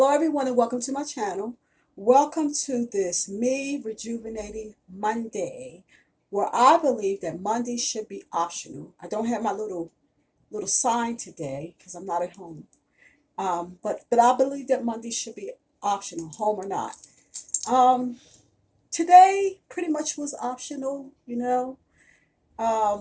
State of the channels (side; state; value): both; identical; correlation 1.00